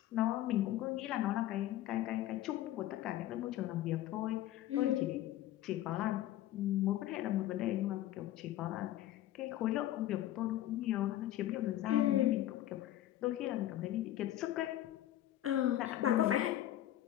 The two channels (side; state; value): right; quieter; 13.6 dB